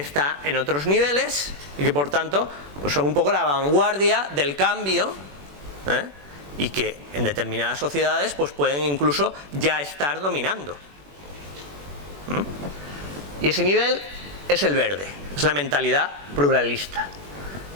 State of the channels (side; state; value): left; late; 21 ms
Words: en otros niveles y que por tanto pues son un poco la vanguardia del cambio, y que en determinadas sociedades pues pueden incluso ya estar dominando. Y ese nivel es el verde, es la mentalidad pluralista